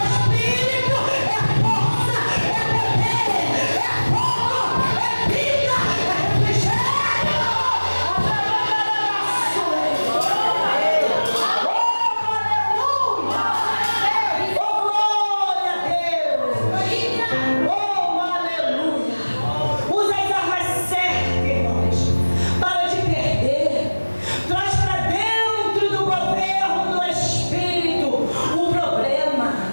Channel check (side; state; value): both; inverted; correlation -1.00